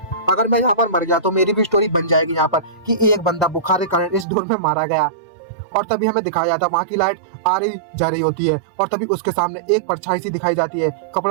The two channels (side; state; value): left; drops out; at 4.2 s